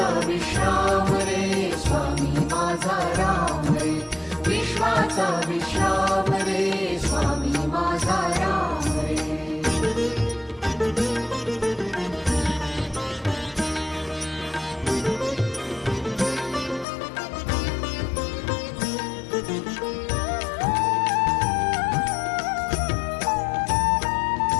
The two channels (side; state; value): right; drops out; at 16.9 s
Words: विश्राम रे स्वामी माझा राम रे, विश्वाचा विश्राम रे स्वामी माझा राम रे।